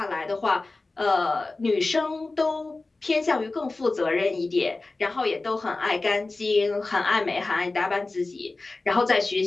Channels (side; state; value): right; quieter; 3.4 dB